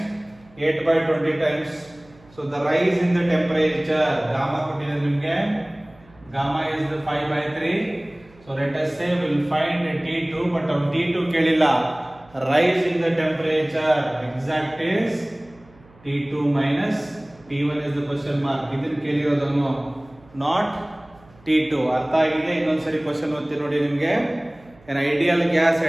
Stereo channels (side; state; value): right; noise; hum, 27 dB below the sound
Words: 8/20 times. So the rise in the temperature, gamma ಕೊಟ್ಟಿದೆ ನಿಮಗೆ. Gamma is the 5/3. So let us say we will find T2, but our T2 ಕೇಳಿಲ್ಲ. Rise in the temperature exact is T2 minus T1 is the question mark. ಇದನ್ನು ಕೇಳಿರೋದನ್ನು not T2. ಅರ್ಥ ಆಗಿದೆ? ಇನ್ನೊಂದ್ಸರಿ question ಓದ್ತೀನಿ ನೋಡಿ ನಿಮಗೆ. An ideal gas